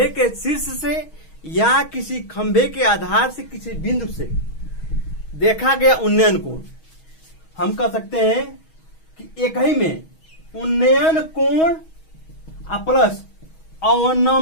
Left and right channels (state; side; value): late; right; 6.3 ms